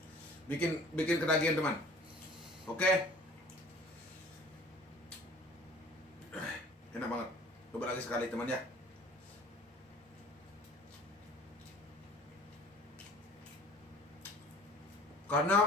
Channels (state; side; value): normal; both; correlation 0.48